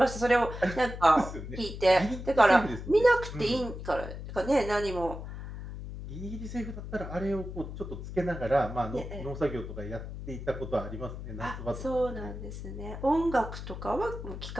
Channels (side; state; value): left; noise; hum, 9 dB below the sound